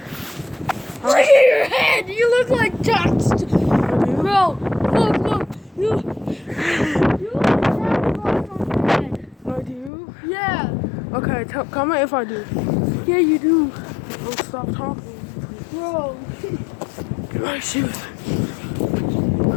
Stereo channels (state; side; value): drops out; right; at 9.9 s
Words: Look at your head! You look like Jax. Bro, look. You look like Jack Frost on your head. I do? Yeah. Okay, comment if I do. Yeah, you do. Don't stop talking. Bro. Get my shoes.